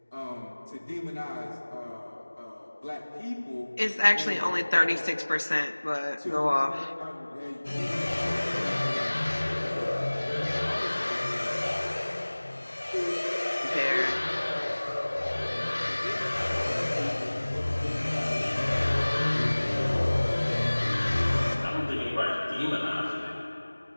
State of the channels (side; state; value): both; inverted; correlation -1.00